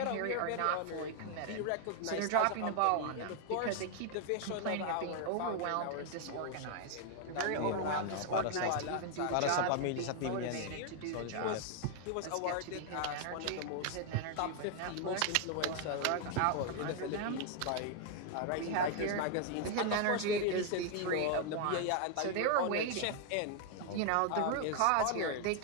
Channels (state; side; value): different; both; correlation 0.00